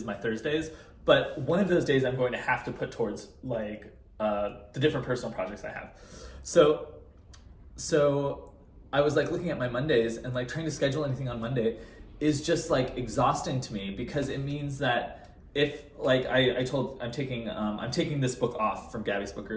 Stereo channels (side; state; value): both; identical; correlation 1.00